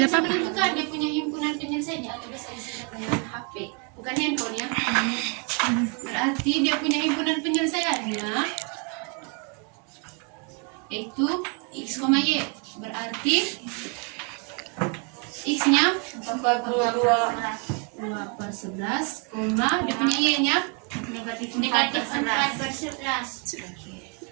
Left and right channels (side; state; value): left; quieter; 36.4 dB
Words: bisa apa-apa. menentukan dia punya himpunan penyelesaiannya atau biasa disebut dengan HP, bukan handphone ya. Berarti dia punya himpunan penyelesaiannya yaitu X, Y. Berarti X-nya 42. 2 per 11, dia punya Y-nya Negatif 4 per 11.